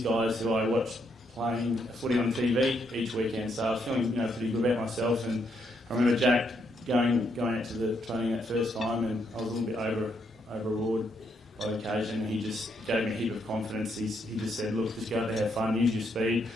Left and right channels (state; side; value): normal; both; correlation 0.76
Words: guys who I watched playing footy on TV each weekend. So I was feeling pretty good about myself. And I remember Jack going out to the training that first time, and I was a little bit overawed by the occasion, and he just gave me a heap of confidence. He just said, look, just go out there, have fun, use your speed,